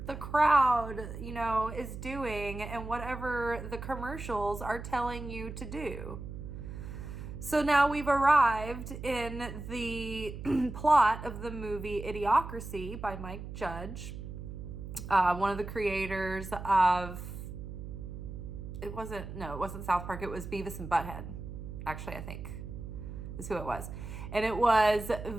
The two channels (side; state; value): right; noise; hum, 9 dB below the sound